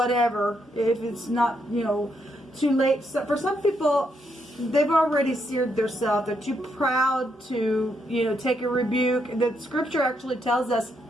if it's not, too late. So for some people, they've already seared themselves. They're too proud to, take a rebuke. The scripture actually tells us,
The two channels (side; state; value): both; normal; correlation 0.78